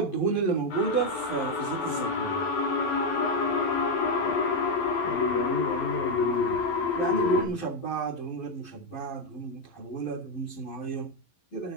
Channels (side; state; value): right; late; 11 ms